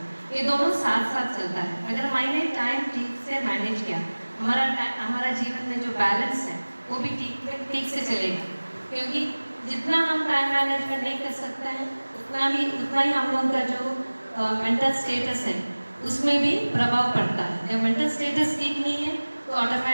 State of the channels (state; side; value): inverted; both; correlation -1.00